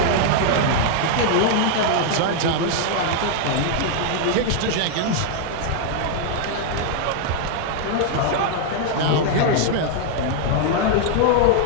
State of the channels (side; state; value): both; different; correlation 0.00